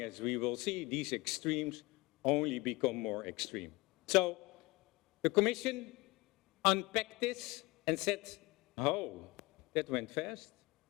as we will see, these extremes only become more extreme. So the Commission unpacked this and said, oh, that went fast.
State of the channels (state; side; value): quieter; right; 22.6 dB